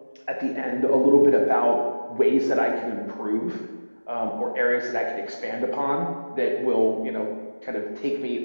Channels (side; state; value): both; inverted; correlation -1.00